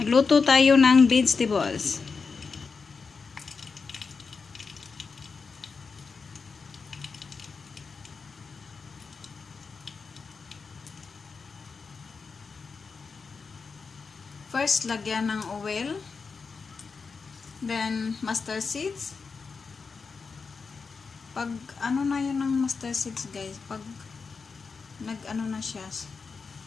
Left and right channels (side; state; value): right; quieter; 4.9 dB